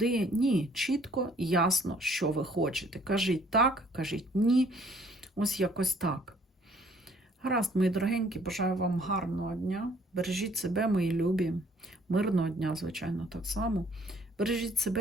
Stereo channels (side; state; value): both; normal; correlation 0.60